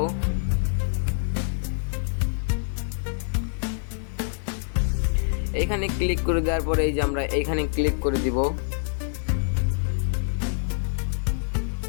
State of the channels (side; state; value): right; silent; 61 dB below the other